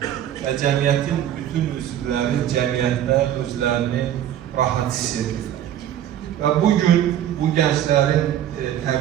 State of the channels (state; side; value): quieter; left; 11.0 dB